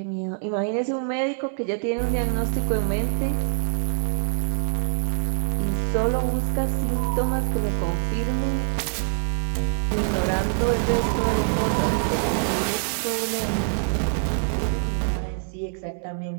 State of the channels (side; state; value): left; silent; digital silence